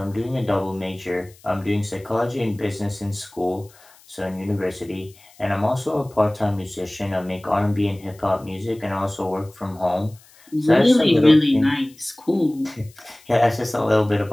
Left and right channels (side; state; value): left; noise; hiss, 27 dB below the sound